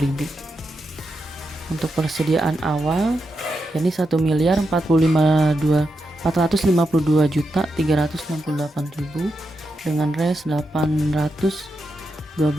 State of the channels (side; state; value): both; normal; correlation 0.86